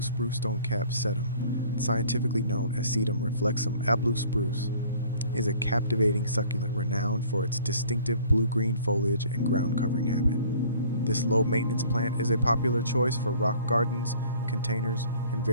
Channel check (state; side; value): inverted; both; correlation -0.52